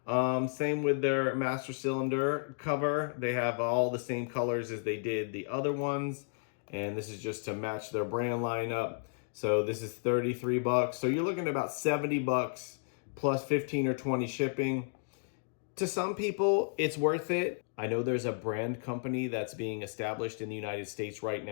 Same with their master cylinder cover. They have all the same colors as they did the other ones. And this is just to match their brand lineup. So this is $33. So you're looking at about $70 plus 15 or 20 shipping. To some people, it's worth it. I know there's a brand company that's being established in the United States right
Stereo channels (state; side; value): silent; right; digital silence